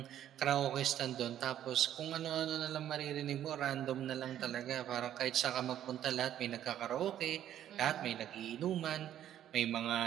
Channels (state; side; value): quieter; left; 11.2 dB